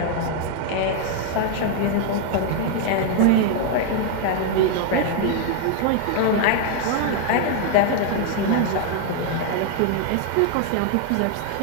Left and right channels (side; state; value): both; different; correlation 0.00